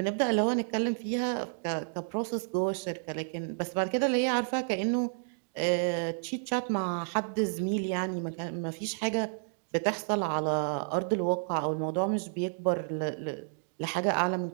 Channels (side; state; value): left; silent; digital silence